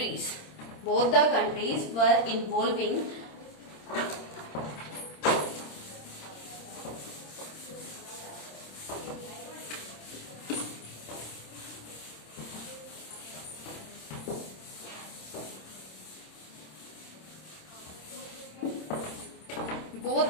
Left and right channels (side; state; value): right; late; 26 ms